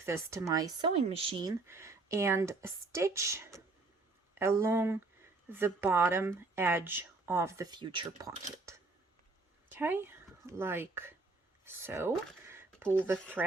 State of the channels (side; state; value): left; quieter; 3.5 dB